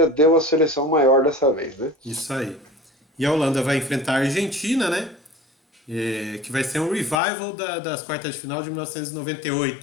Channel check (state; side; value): drops out; right; at 7.2 s